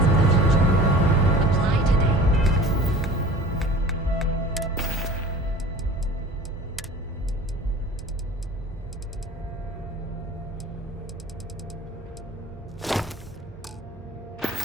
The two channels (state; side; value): normal; both; correlation 0.42